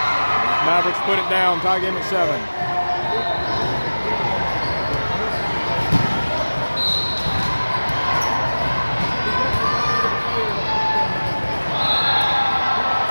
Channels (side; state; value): both; inverted; correlation -1.00